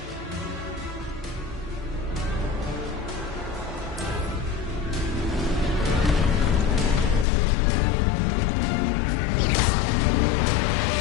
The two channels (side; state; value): right; drops out; at 7.2 s